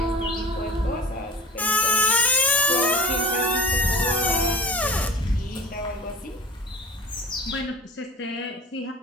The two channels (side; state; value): both; normal; correlation 0.38